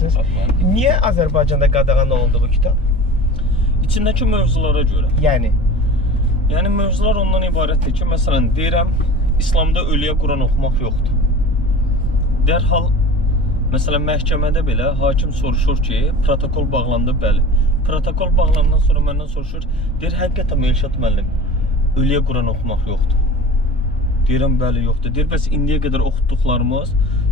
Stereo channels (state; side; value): normal; both; correlation 0.38